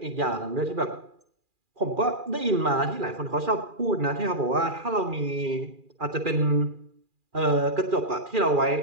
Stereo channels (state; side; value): late; left; 2.4 ms